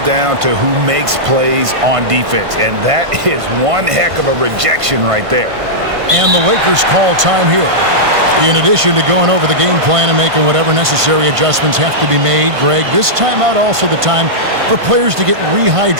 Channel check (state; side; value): late; left; 1.5 ms